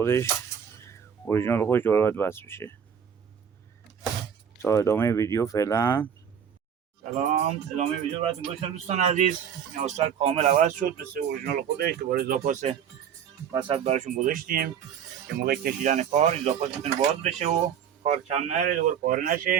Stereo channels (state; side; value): quieter; left; 8.1 dB